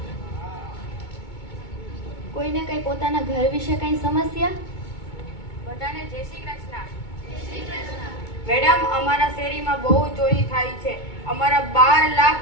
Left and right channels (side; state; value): right; late; 2.2 ms